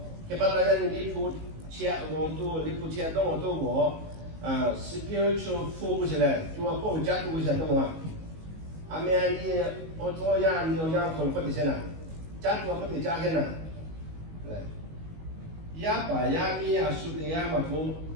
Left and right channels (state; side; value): late; left; 19 ms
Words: che parla di pu c'è un tu di pu c'è don tu mo spiritual focus le tu a po già tu sei no a me ani o to ya ni o ya ko ko di sena già tu ko di già che na ya pa ya mi a su de ya ma ko